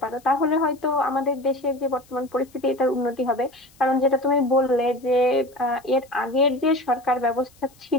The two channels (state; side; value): noise; left; hiss, 29 dB below the sound